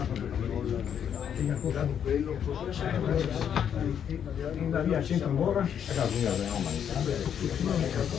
Via, centro ancora.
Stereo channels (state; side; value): quieter; right; 8.6 dB